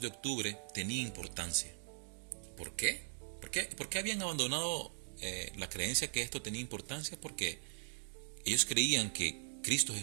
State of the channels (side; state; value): left; silent; digital silence